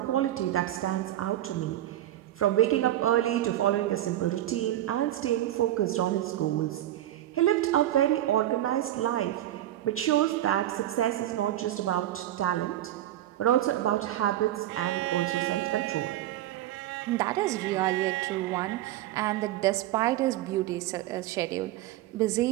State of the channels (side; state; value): left; quieter; 13.6 dB